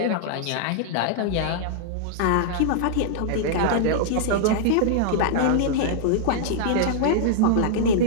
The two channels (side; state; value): both; different; correlation -0.01